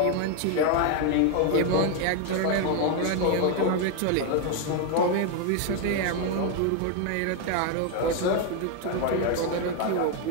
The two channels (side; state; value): both; different; correlation 0.01